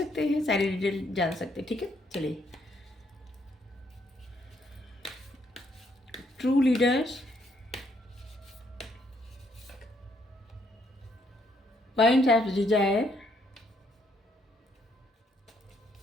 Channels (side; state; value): both; normal; correlation 0.72